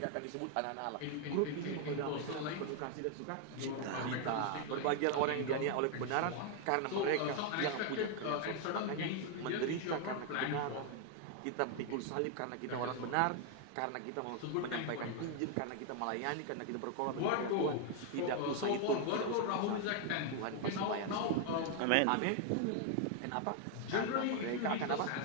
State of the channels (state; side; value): different; both; correlation 0.00